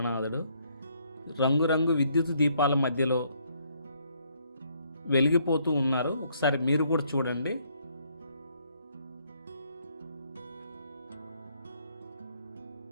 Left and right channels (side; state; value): both; inverted; correlation -0.69